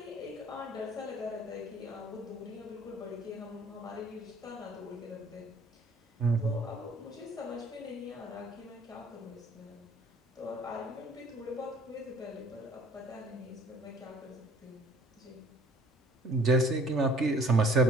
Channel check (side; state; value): both; normal; correlation 0.55